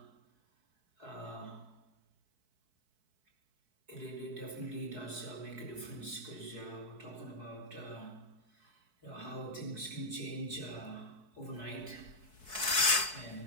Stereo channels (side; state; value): left; late; 4.6 ms